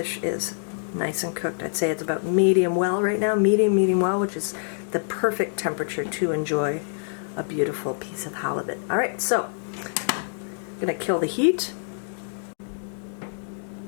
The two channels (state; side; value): silent; right; digital silence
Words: is nice and cooked. I'd say it's about medium well right now, medium well, which is the perfect temperature to enjoy a beautiful piece of halibut. All right, so I'm gonna kill the heat.